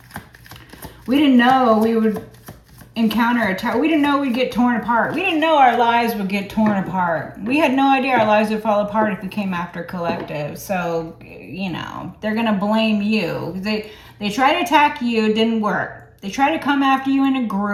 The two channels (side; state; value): both; identical; correlation 1.00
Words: We didn't know we would encounter a tower. We didn't know we'd get torn apart. We didn't know our lives would get torn apart. We had no idea our lives would fall apart if we came after collective. So, you know, they're going to blame you. They tried to attack you. It didn't work. They tried to come after you in a